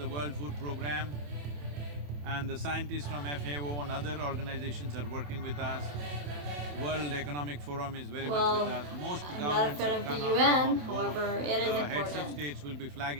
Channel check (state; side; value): late; left; 27 ms